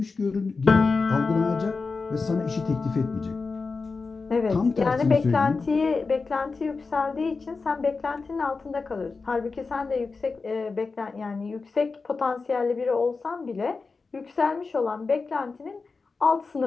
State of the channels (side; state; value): right; quieter; 4.3 dB